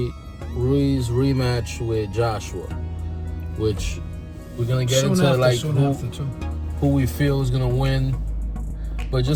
Ruiz rematch with Joshua, which we're gonna get into who we feel is gonna win. But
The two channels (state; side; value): identical; both; correlation 1.00